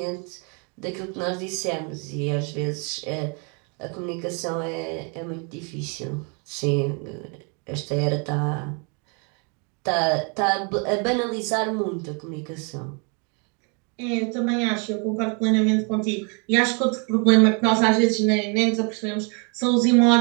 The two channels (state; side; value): quieter; left; 35.8 dB